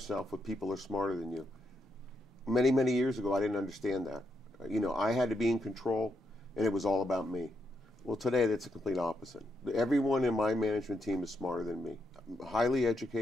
with people who are smarter than you. Many, many years ago, I didn't understand that. I had to be in control, and it was all about me. Well, today, that's a complete opposite. Everyone in my management team is smarter than me. Highly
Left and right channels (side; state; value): both; normal; correlation 0.81